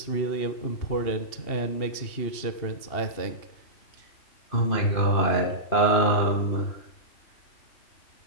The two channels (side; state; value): right; late; 2.8 ms